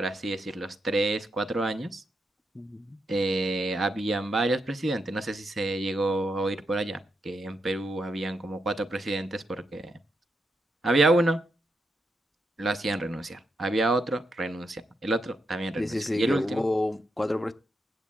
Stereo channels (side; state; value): both; normal; correlation 0.83